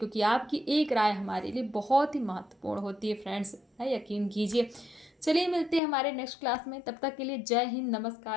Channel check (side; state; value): right; drops out; at 5.8 s